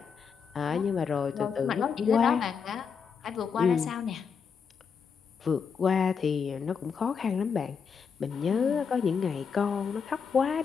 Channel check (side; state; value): right; quieter; 6.2 dB